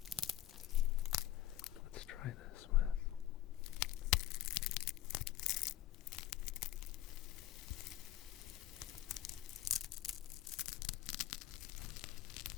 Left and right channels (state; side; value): quieter; right; 13.7 dB